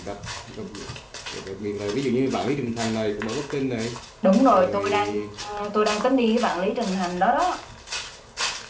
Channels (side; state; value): both; identical; correlation 1.00